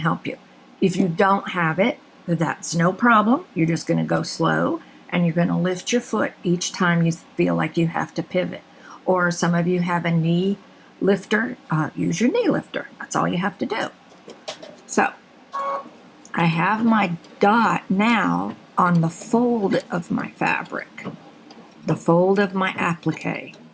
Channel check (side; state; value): both; identical; correlation 1.00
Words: you. If you don't have it, that's no problem. You're just going to go slow, and you're going to lift your foot each time you feel like you have to pivot. Or some of you have a knee lifter, use your knee lifter. That's all you have to do. So I have my dot now on the fold of my fabric, the fold of my applique.